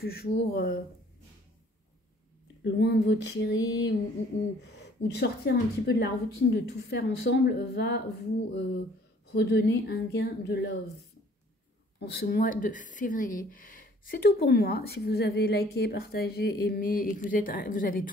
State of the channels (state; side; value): normal; both; correlation 0.56